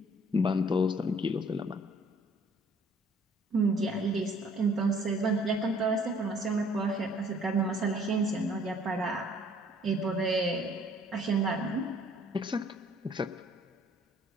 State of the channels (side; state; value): both; normal; correlation 0.58